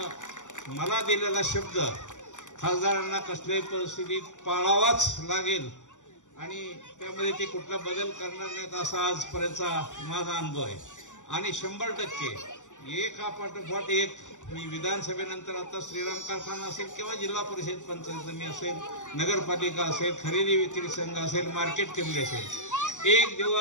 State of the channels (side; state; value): right; late; 0.85 ms